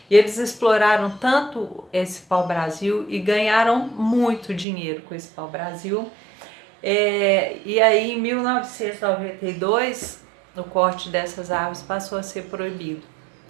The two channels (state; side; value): drops out; left; at 4.7 s